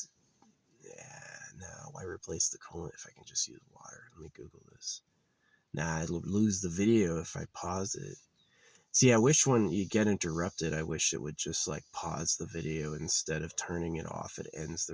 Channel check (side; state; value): both; identical; correlation 1.00